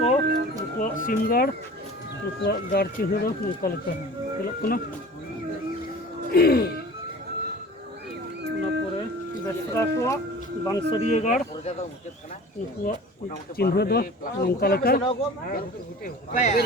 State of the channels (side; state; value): both; normal; correlation 0.41